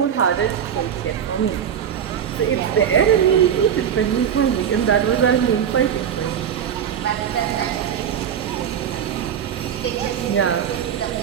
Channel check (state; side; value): quieter; left; 8.7 dB